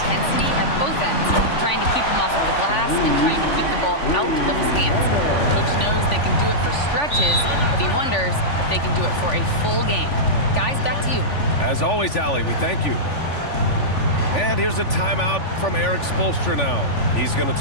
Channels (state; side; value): late; right; 3.5 ms